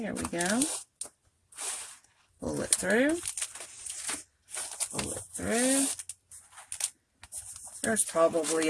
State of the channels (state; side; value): identical; both; correlation 1.00